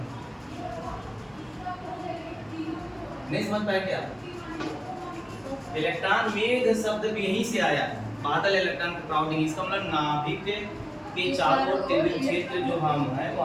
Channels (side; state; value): both; identical; correlation 1.00